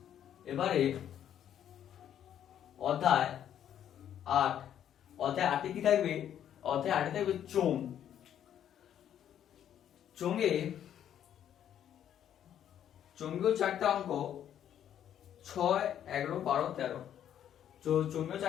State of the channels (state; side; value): quieter; right; 10.1 dB